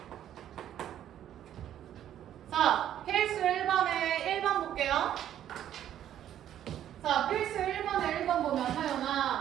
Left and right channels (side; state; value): left; quieter; 11.0 dB